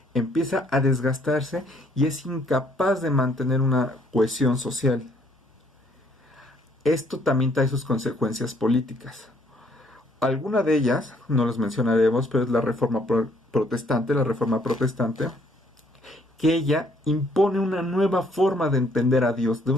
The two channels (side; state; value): both; normal; correlation 0.65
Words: Empieza a desgastarse y es incapaz de mantener una cohesión social. Esto también trae sus consecuencias políticas. Alguna de ellas, no las mencionaremos, pero es la reforma protestante, que ella impone una nueva forma de entender a Dios, de